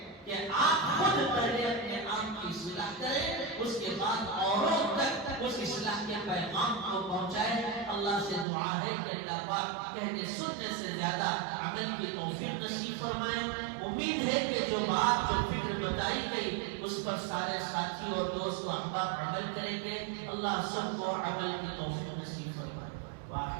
کہ آپ خود پہلے اپنے آپ کی اصلاح کریں، اس کے بعد اوروں تک اس اصلاح کے پیغام کو پہنچائیں. اللہ سے دعا ہے کہ اللہ پاک کہنے سننے سے زیادہ عمل کی توفیق نصیب فرمائے. امید ہے کہ جو بات جو فکر بتائی گئی اس پر سارے ساتھی اور دوست و احباب عمل کریں گے. اللہ سب کو عمل کی توفیق نصیب فرمائے.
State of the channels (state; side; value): drops out; left; at 8.5 s